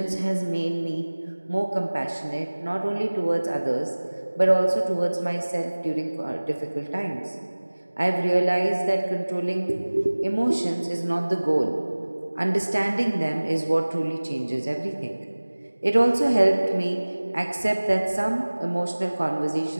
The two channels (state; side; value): inverted; both; correlation -1.00